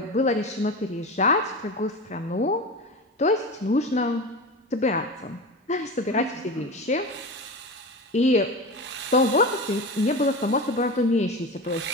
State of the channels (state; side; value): normal; both; correlation 0.27